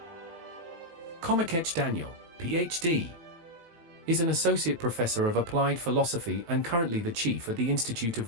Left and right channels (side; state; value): left; late; 18 ms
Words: Komikech Daniel, Ph.D. is an associate professor of applied philosophy and currently the chief at the Institute of